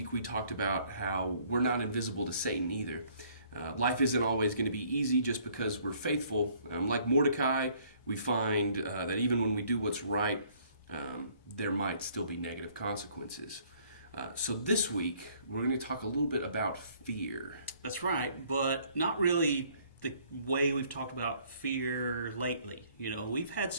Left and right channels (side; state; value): both; inverted; correlation -0.61